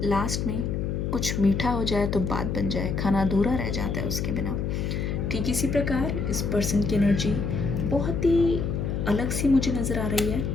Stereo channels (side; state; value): left; noise; hum, 1 dB below the sound